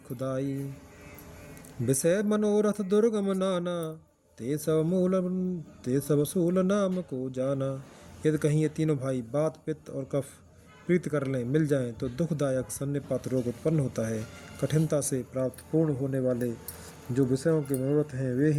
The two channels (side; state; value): both; identical; correlation 1.00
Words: विषय मनोरथ दुर्गम नाना ते सब सूल नाम को जाना। यदि कहीं ये तीनों भाई बात पित्त और कफ प्रीत कर लें मिल जाएं तो दुखदायक सन्निपात रोग उत्पन्न होता है। कठिनता से प्राप्त पूर्ण होने वाले जो विषयों के मनोरथ हैं वे